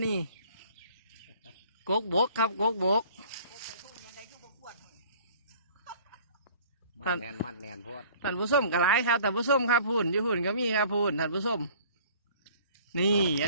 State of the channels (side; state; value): both; inverted; correlation -0.51